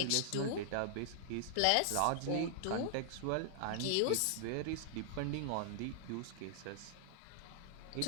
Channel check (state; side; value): different; both; correlation -0.01